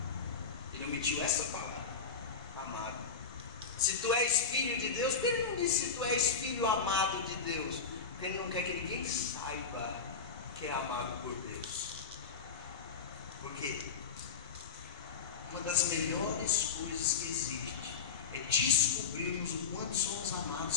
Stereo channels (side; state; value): right; quieter; 5.6 dB